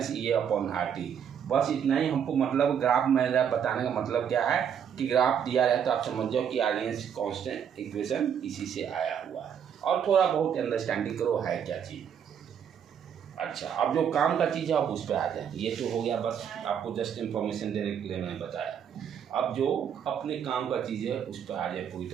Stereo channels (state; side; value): quieter; left; 8.2 dB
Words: E A upon R T. बस इतना ही हमको मतलब ग्राफ मेरा बताने का मतलब क्या है कि ग्राफ दिया रहे तो आप समझ जाओ कि आर्यन्स कांस्टेंट इक्वेशन इसी से आया हुआ है, और थोड़ा बहुत अंडरस्टैंडिंग करो है क्या चीज़। अच्छा, अब जो काम का चीज़ है आप उस पर आ जाए। ये तो हो गया, बस आपको जस्ट इन्फॉर्मेशन देने के लिए मैंने बताया। अब जो अपने काम का चीज़ है उस पर आ जाए पूरी